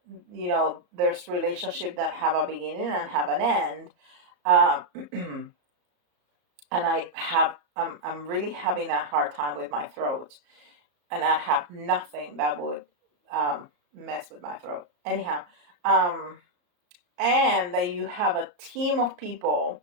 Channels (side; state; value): left; late; 34 ms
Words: there's relationship that have a beginning and have an end. uh, and I'm really having a hard time with my throat, and I have nothing that would um, mess with my throat anyhow. um, and that you have a team of people